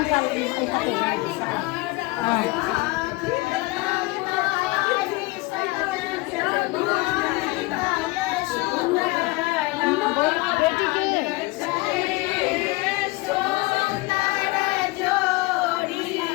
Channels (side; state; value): right; quieter; 22.7 dB